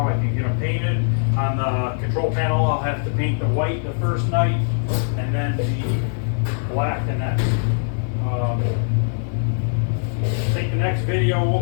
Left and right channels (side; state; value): right; silent; 57 dB below the other